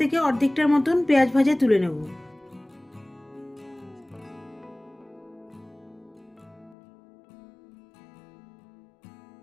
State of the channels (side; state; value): right; drops out; at 6.8 s